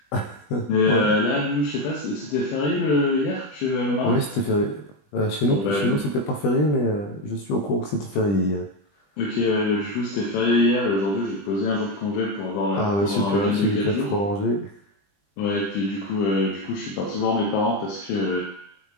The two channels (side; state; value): right; late; 20 ms